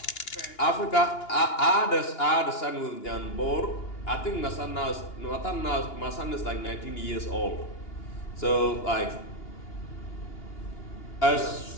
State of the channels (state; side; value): late; right; 2.8 ms